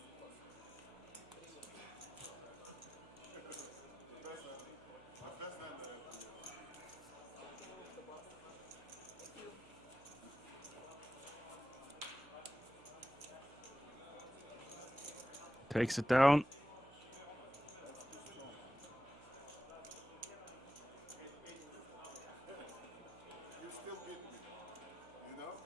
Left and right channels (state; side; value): noise; right; hum, 21 dB below the sound